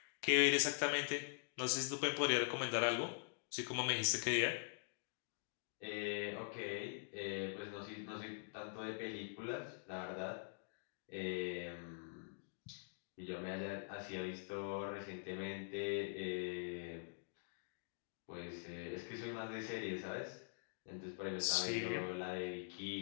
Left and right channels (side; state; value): right; silent; digital silence